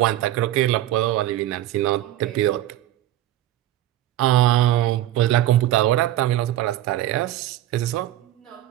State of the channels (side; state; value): left; quieter; 13.8 dB